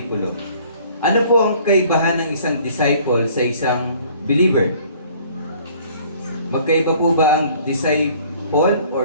ano po ang kaibahan ng isang disciple sa isang believer? Magkaiba po ba ang disciple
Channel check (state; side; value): inverted; both; correlation -0.55